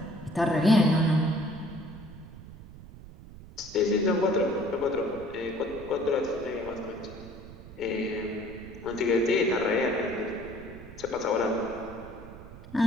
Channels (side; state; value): right; noise; rumble, 16 dB below the sound